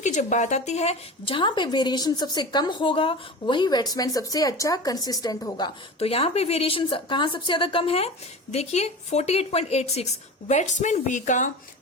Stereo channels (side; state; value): both; normal; correlation 0.32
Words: की जब बात आती है जहां पे वेरिएशन सबसे कम होगा वही बैट्समैन सबसे अच्छा कंसिस्टेंट होगा। तो यहाँ पे वेरिएशन कहाँ सबसे ज्यादा कम है, देखिए 48.86 बैट्समैन बी का